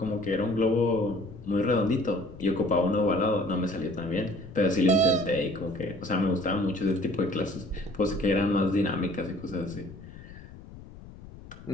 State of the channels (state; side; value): noise; left; rumble, 17 dB below the sound